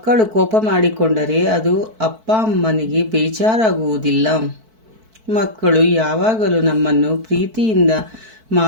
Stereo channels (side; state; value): left; late; 4.5 ms